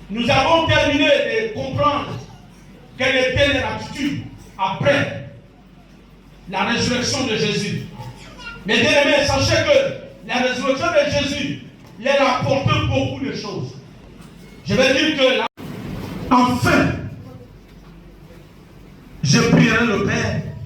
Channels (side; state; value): both; identical; correlation 1.00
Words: Nous avons terminé de comprendre quelle était leur attitude après la résurrection de Jésus. Mais bien aimés, sachez que la résurrection de Jésus il a apporté beaucoup de choses. Je vais dire que là, enfin, je prierai le Père